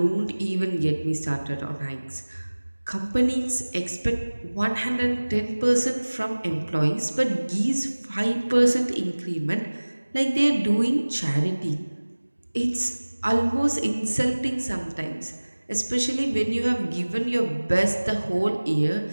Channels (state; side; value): inverted; both; correlation -1.00